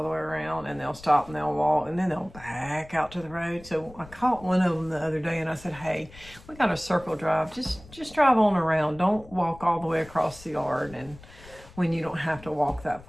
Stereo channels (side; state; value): left; noise; rumble, 20 dB below the sound